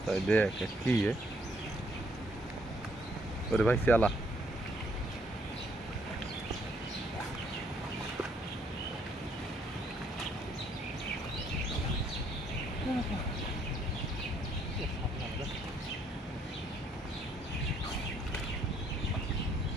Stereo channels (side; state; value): both; normal; correlation 0.68